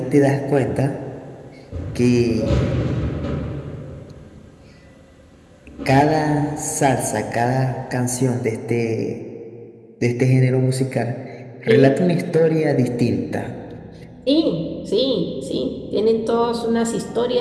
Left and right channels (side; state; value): both; identical; correlation 1.00